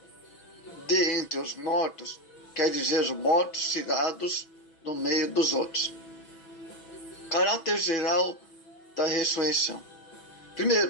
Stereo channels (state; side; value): late; right; 6.1 ms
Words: de entre os mortos quer dizer os mortos tirados do meio dos outros. Caráter geral da ressurreição.